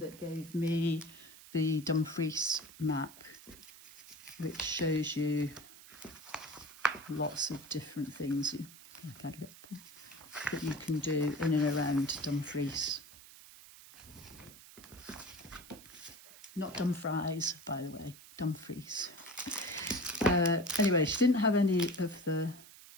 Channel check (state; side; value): noise; right; hiss, 19 dB below the sound